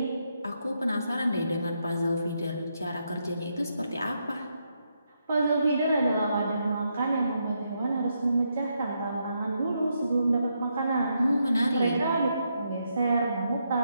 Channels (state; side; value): inverted; both; correlation -0.80